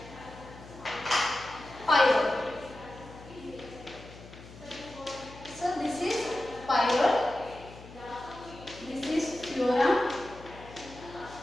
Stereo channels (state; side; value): noise; left; hum, 18 dB below the sound